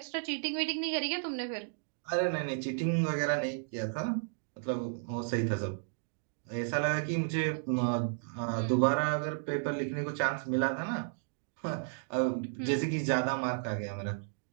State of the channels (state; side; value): silent; left; digital silence